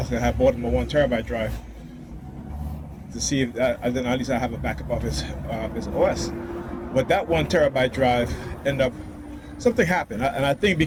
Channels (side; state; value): both; identical; correlation 1.00